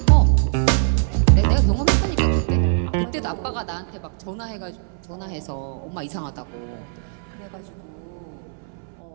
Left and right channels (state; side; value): silent; left; 61 dB below the other